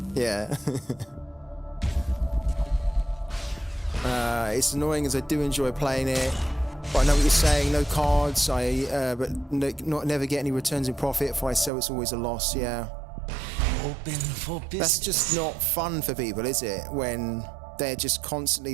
Yeah. It's annoying as I do enjoy playing it. But I know what you're saying, no cards, never get any returns in profit. If I sell, it's always a loss, yeah. Open for business. That's just not fun for people, is it? When they're just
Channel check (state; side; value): drops out; left; at 11.7 s